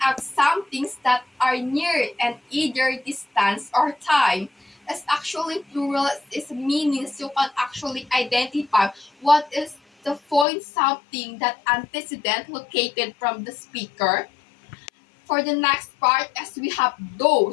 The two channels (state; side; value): drops out; right; at 10.5 s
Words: out some things that are near and either distance or time, as actually plural is meanings you can actually identify what is the point something that antecedent located from the speaker. For the next part, as we have